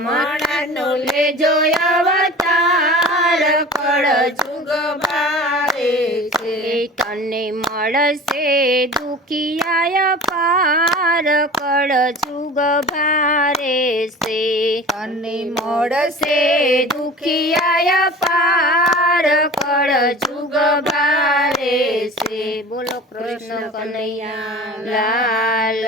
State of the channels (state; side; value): normal; both; correlation 0.39